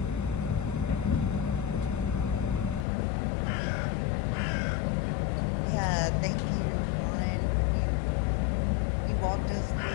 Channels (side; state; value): right; drops out; at 2.9 s